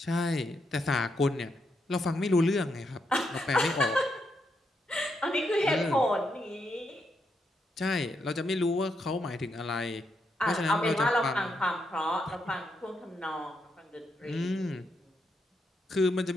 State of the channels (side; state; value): both; normal; correlation 0.80